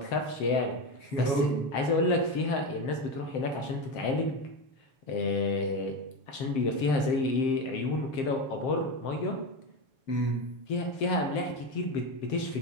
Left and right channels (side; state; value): right; late; 7.6 ms